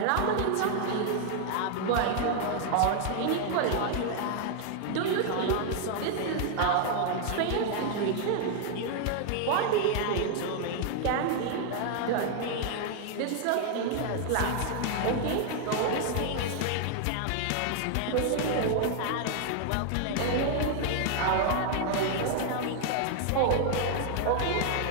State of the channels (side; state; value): both; different; correlation 0.00